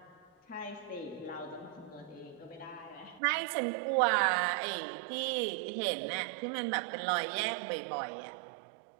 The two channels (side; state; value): left; drops out; at 3.2 s